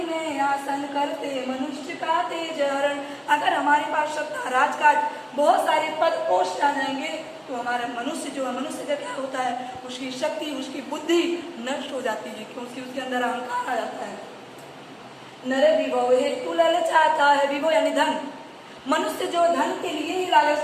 में आसन करते मनुष्य का तेज हरण। अगर हमारे पास सत्ता, राजकाज, बहुत सारे पद पोस्ट आ जाएंगे तो हमारा मनुष्य जो है, मनुष्य का क्या होता है? उसकी शक्ति, उसकी बुद्धि नष्ट हो जाती है, क्योंकि उसके अंदर अहंकार आ जाता है। नर विभव हेतु ललचाता है, विभव यानी धन। मनुष्य जो धन के लिए ही लालच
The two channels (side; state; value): both; identical; correlation 1.00